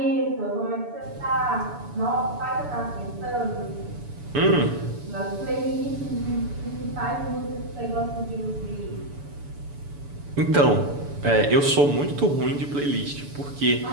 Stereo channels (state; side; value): late; left; 7.0 ms